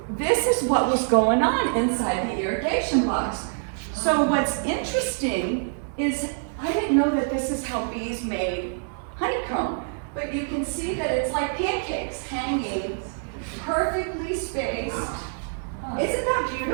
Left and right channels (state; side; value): silent; left; 61 dB below the other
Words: this is what was going on inside the irrigation box. So what's interesting is I didn't know that this is how bees made honeycomb, but you can see that it's like pancakes hanging perfectly spaced. Isn't that